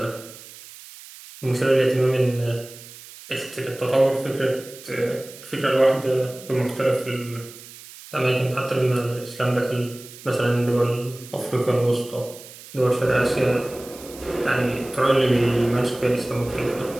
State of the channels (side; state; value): right; noise; hiss, 17 dB below the sound